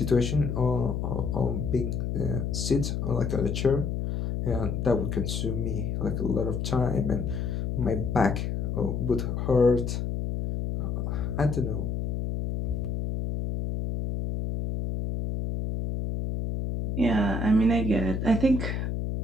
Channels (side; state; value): left; noise; hum, 2 dB below the sound